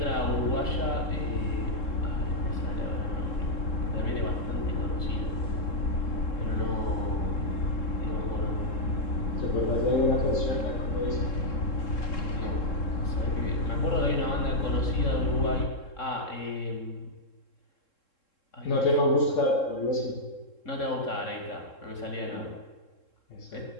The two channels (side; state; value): right; late; 3.7 ms